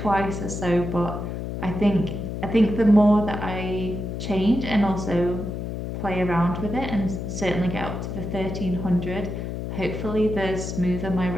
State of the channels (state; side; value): noise; left; hum, 5 dB below the sound